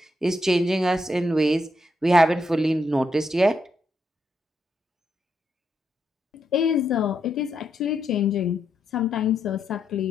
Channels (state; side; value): normal; both; correlation 0.80